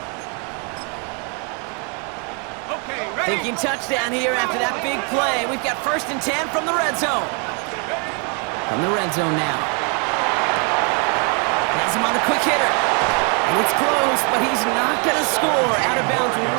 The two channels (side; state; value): left; quieter; 36.6 dB